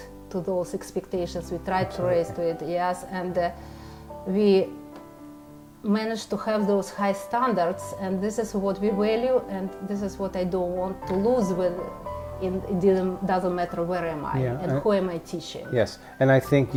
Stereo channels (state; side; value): identical; both; correlation 1.00